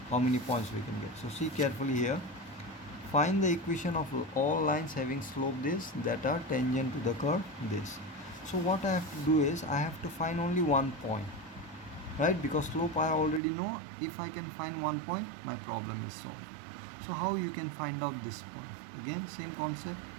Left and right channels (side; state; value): left; drops out; at 13.4 s